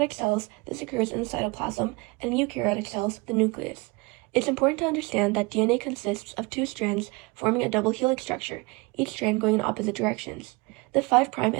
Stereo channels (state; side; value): quieter; left; 26.3 dB